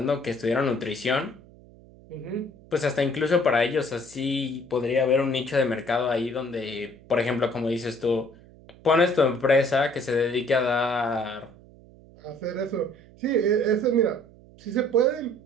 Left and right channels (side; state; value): right; noise; hum, 23 dB below the sound